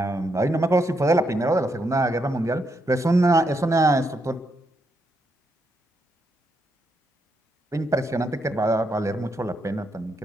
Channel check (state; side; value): normal; both; correlation 0.80